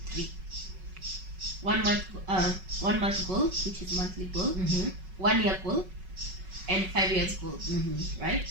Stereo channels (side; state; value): left; late; 5.4 ms